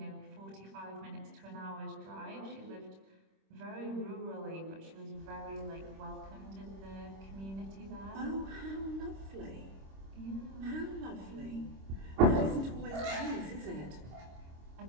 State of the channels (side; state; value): left; late; 26 ms